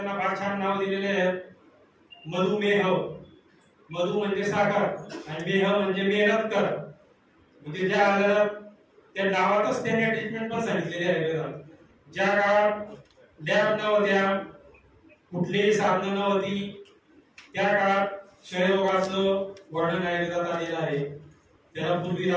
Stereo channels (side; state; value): both; identical; correlation 1.00